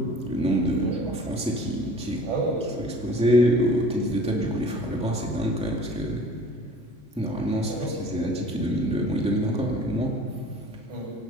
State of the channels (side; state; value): both; normal; correlation 0.46